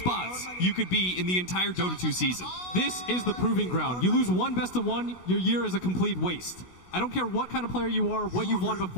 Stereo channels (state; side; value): late; right; 16 ms